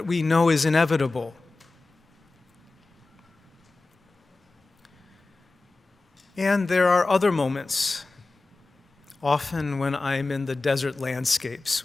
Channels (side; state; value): right; quieter; 3.4 dB